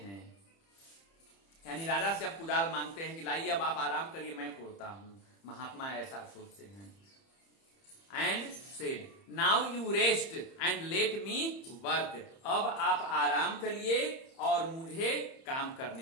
यानी राजा से अब कुदाल मांगते हैं कि लाइए अब आप आराम करिए, मैं कोड़ता हूं। महात्मा ऐसा सोचते हैं। And said now you rest and let me work, अब आप आराम करिए और मुझे काम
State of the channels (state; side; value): late; right; 30 ms